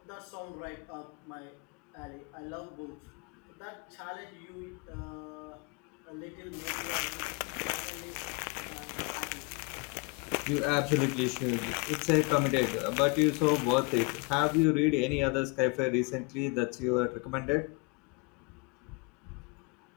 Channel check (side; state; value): right; quieter; 28.8 dB